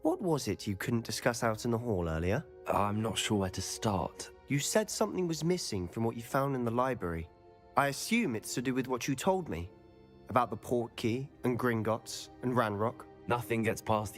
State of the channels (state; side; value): identical; both; correlation 1.00